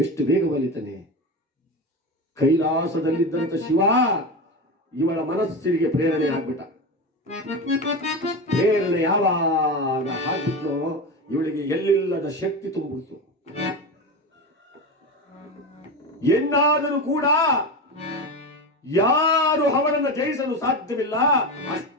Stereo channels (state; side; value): normal; both; correlation 0.22